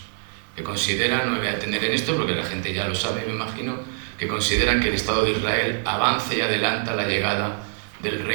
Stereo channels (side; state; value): left; silent; 62 dB below the other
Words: que consideran, no me voy a detener en esto porque la gente ya lo sabe, me imagino, que consideran que el Estado de Israel avance y adelanta la llegada del